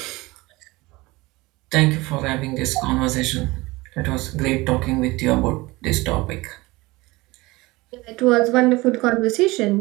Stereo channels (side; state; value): left; quieter; 21.6 dB